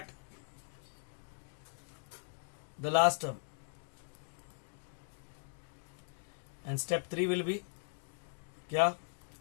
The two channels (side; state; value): right; silent; digital silence